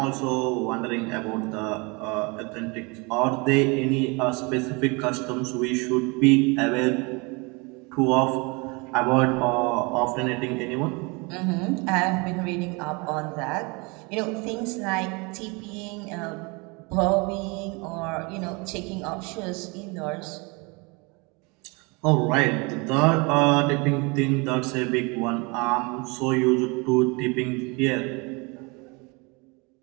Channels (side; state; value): left; quieter; 28.6 dB